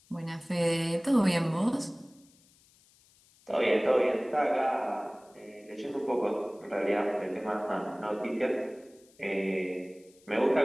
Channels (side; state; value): left; noise; hiss, 30 dB below the sound